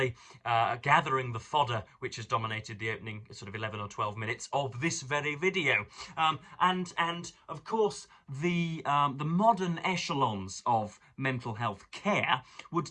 gathering the fodder which has dominated the opening sort of 11 or 12 minutes of this very video. And of course, the modern echelons of mental health care would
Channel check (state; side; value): identical; both; correlation 1.00